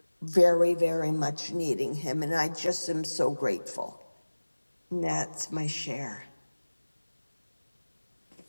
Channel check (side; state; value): both; inverted; correlation -1.00